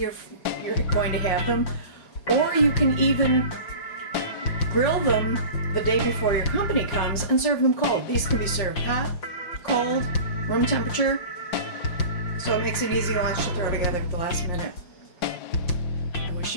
going to have them, or you can even grill them the day before your company comes and serve them cold. These can be served hot, cold, room temperature, so it makes an easy lunch to throw together at the last minute. I wish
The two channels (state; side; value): late; right; 5.5 ms